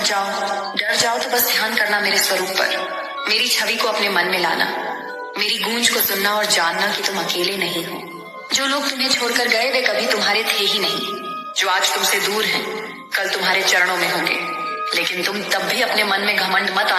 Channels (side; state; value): both; identical; correlation 1.00